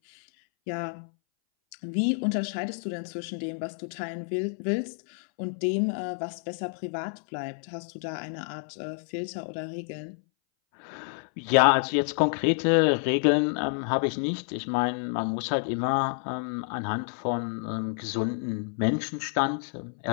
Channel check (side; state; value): right; silent; 59 dB below the other